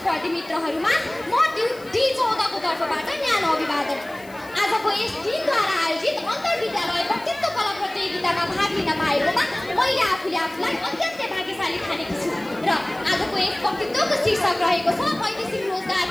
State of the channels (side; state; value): left; noise; hiss, 24 dB below the sound